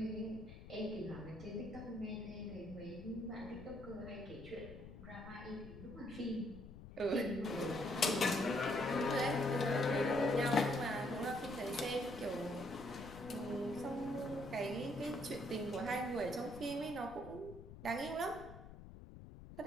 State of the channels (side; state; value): left; noise; rumble, 14 dB below the sound